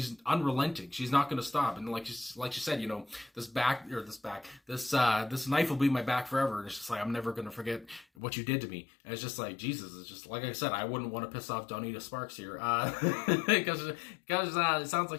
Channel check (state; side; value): drops out; right; at 8.1 s